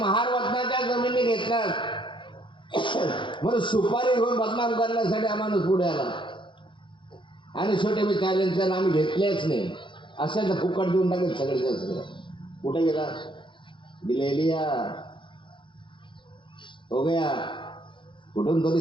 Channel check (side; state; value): right; late; 0.24 ms